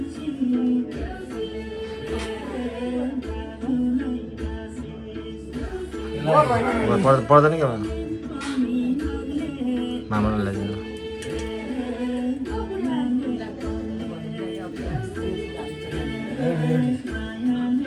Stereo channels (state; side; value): identical; both; correlation 1.00